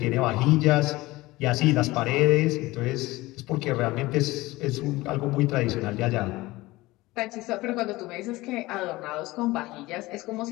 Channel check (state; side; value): quieter; right; 19.7 dB